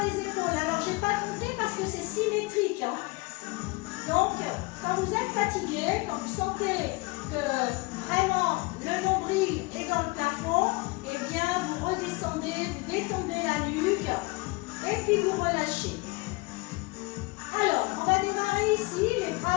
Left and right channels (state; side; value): quieter; right; 24.8 dB